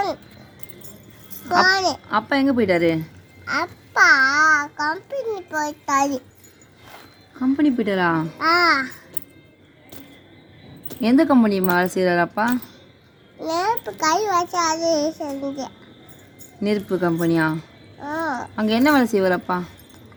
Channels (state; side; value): identical; both; correlation 1.00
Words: அப்பா எங்கே போயிட்டாரு? அப்பா கம்பெனி போயிட்டாரு. கம்பெனி போயிட்டாரா? எந்த கம்பெனி வேலை செய்கிறாரு அப்பா? நெருப்பு கை வச்சு அது செஞ்சேன். நெருப்பு கம்பெனியா? அங்கே என்ன வேலை செய்வார் அப்பா?